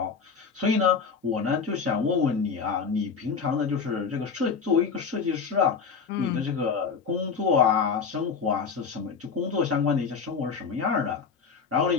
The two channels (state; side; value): quieter; right; 5.7 dB